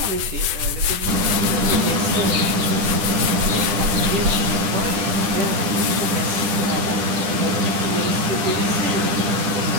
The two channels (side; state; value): left; late; 10 ms